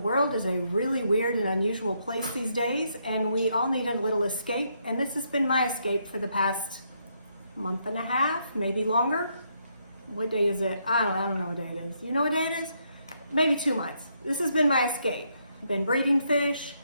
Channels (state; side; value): inverted; both; correlation -0.76